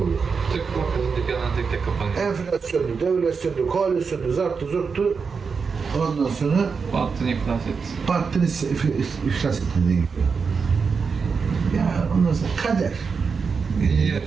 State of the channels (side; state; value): left; quieter; 5.4 dB